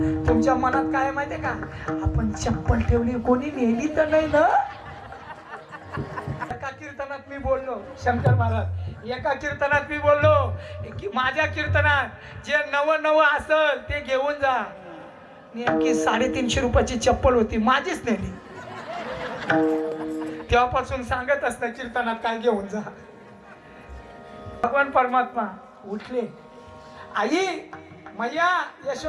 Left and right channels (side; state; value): both; identical; correlation 1.00